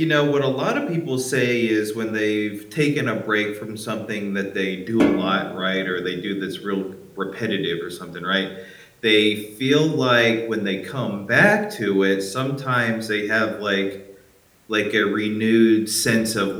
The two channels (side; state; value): both; identical; correlation 1.00